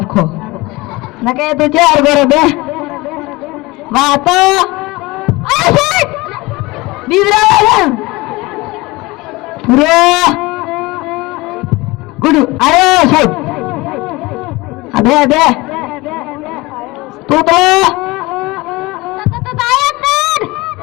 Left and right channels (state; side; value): quieter; right; 22.1 dB